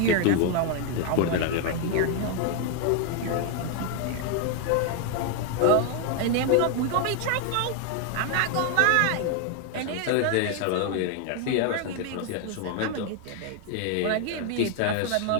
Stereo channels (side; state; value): both; different; correlation 0.01